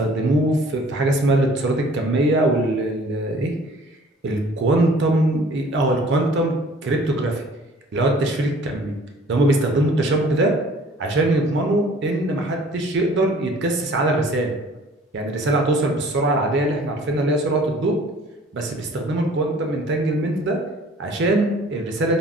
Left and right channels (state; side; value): normal; both; correlation 0.52